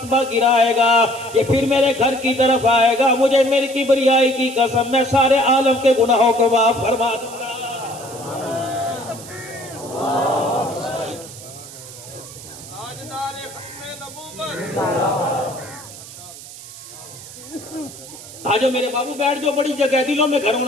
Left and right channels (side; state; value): right; noise; hiss, 15 dB below the sound